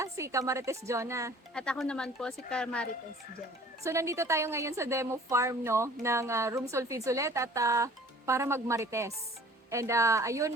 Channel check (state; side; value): normal; both; correlation 0.50